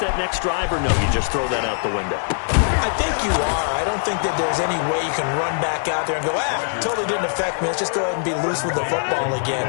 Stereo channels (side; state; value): right; silent; 63 dB below the other